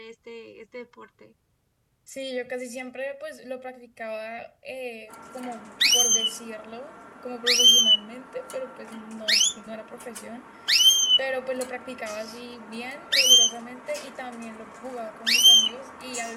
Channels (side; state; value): both; identical; correlation 1.00